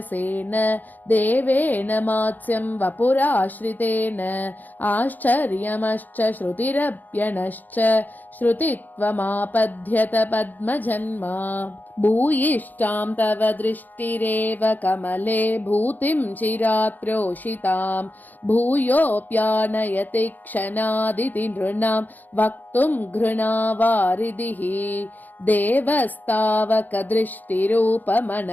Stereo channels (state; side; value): late; right; 0.084 ms